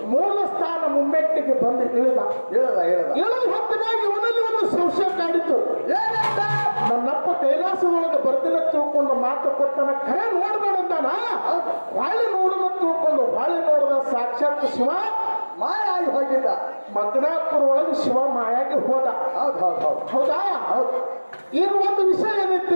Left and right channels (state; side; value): inverted; both; correlation -1.00